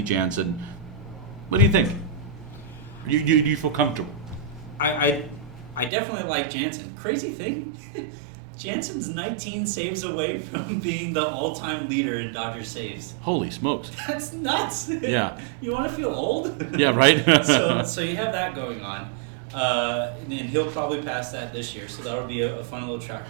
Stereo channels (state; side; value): drops out; left; at 5.9 s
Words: Jansen. What do you think? Do you feel comfortable? I definitely like Jansen. Crazy thing, Jansen's 19 saves away from being the all-time leader in Dodgers saves. Holy smokes! That's nuts. Yeah. You want to feel old? Yeah, right. So you have that going on, and he'll probably pass that this year. So that'll be a fun little